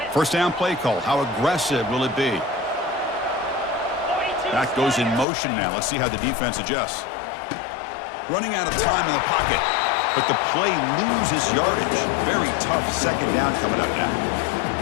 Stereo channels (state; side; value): drops out; right; at 5.2 s